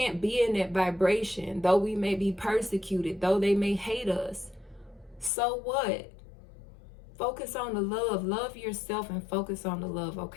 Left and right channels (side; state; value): right; drops out; at 5.3 s